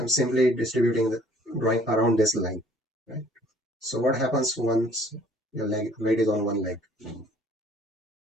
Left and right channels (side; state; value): both; normal; correlation 0.57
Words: simply distributing the drawing around this line, right? So what happens once your leg weight is on one leg?